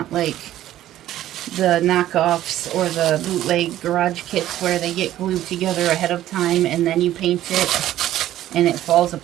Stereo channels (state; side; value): quieter; left; 13.2 dB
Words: like the knockoffs or the bootleg garage kits where they get glued together ahead of time and then you paint it and it falls